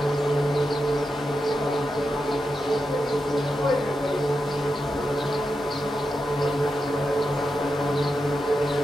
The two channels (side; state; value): both; normal; correlation 0.88